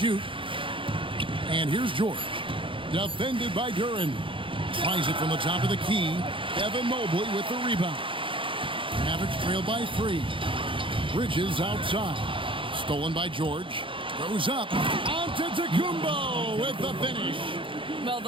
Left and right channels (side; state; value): left; late; 0.25 ms